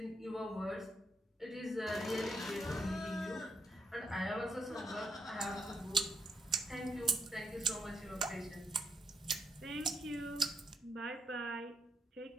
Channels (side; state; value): both; normal; correlation 0.76